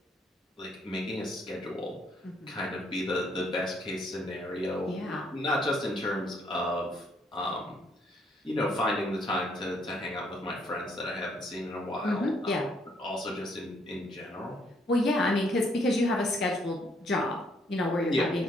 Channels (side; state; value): both; normal; correlation 0.69